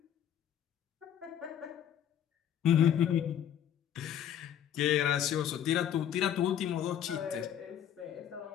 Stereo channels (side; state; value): right; quieter; 9.9 dB